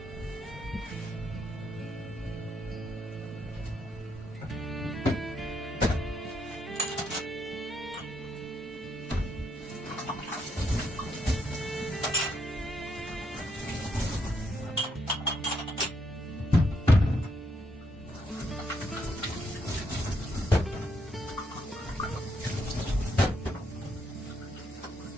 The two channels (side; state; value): both; normal; correlation 0.76